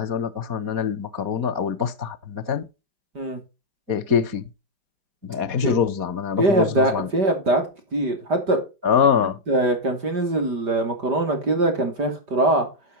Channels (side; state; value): left; late; 5.0 ms